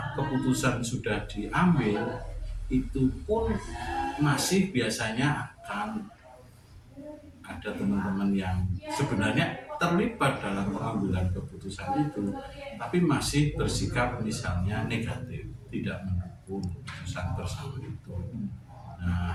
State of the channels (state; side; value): identical; both; correlation 1.00